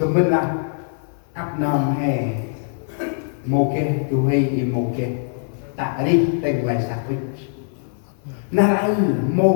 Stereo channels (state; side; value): silent; right; 55 dB below the other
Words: bên là áp nằm hè mô kê tu hay im mô kê tạ đi tên lại sạc vích nào anh